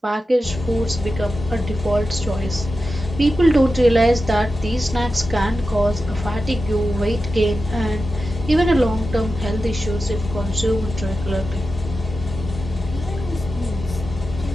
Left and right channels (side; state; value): both; normal; correlation 0.92